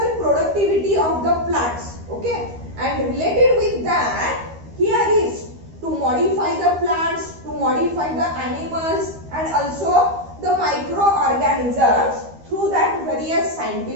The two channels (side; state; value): left; late; 13 ms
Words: productivity of the plants, okay. And related with that, here is to modify the plants, to modify the animals and also the microorganisms through that various